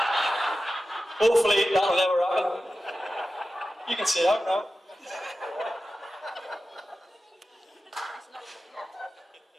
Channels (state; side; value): normal; both; correlation 0.93